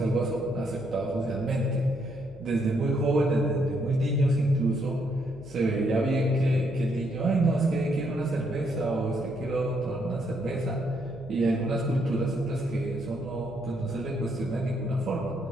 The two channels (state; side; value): noise; left; hum, 20 dB below the sound